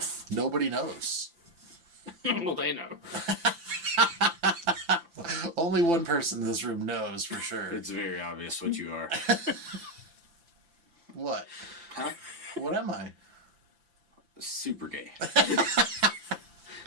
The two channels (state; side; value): late; left; 5.9 ms